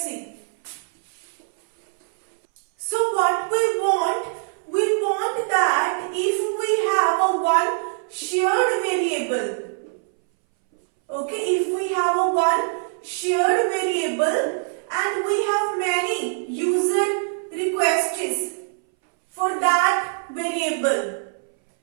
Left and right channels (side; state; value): left; silent; 62 dB below the other